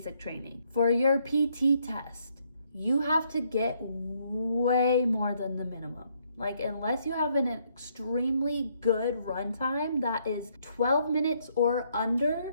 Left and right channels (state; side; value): inverted; both; correlation -0.71